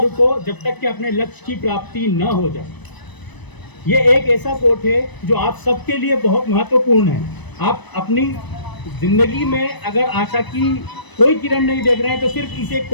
जब तक कि अपने लक्ष्य की प्राप्ति न हो जाए। ये एक ऐसा कोट है जो आप सबके लिए बहुत महत्वपूर्ण है। आप अपनी जिंदगी में अगर आशा की कोई किरण नहीं देख रहे हैं तो सिर्फ इसे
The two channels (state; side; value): late; right; 1.0 ms